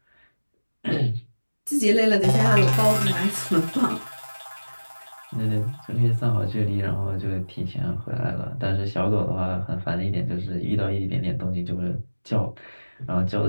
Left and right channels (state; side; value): inverted; both; correlation -1.00